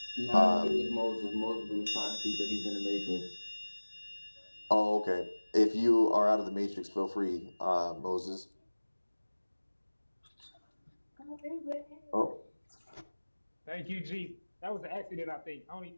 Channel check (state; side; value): inverted; both; correlation -1.00